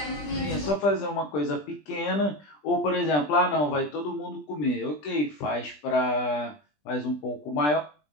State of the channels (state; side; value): late; right; 20 ms